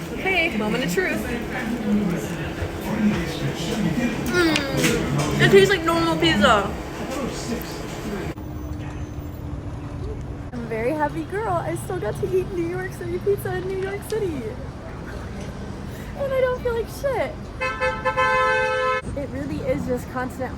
Okay, moment of truth. It tastes like normal pizza. I'm a very happy girl. I still got to eat New York City pizza in New York City. And I don't feel like shit. It really is just constant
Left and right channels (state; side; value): identical; both; correlation 1.00